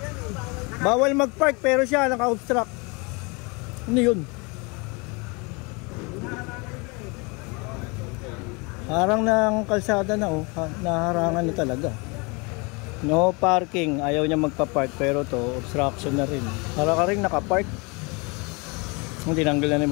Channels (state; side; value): quieter; right; 29.1 dB